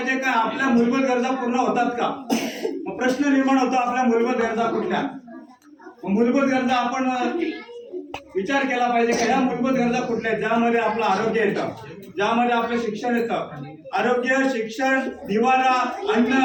का आपल्या मूलभूत गरजा पूर्ण होतात का. मग प्रश्न निर्माण होतो आपल्या मूलभूत गरजा कुठल्या. मूलभूत गरजा आपण विचार केला पाहिजे का या मूलभूत गरजा कुठल्या ज्यामध्ये आपलं आरोग्य येतं, ज्यामध्ये आपलं शिक्षण येतं. आरोग्य, शिक्षण, निवारा, अन्न,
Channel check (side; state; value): both; identical; correlation 1.00